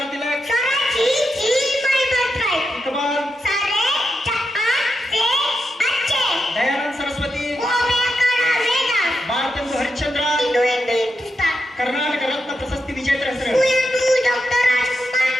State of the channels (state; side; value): normal; both; correlation 0.86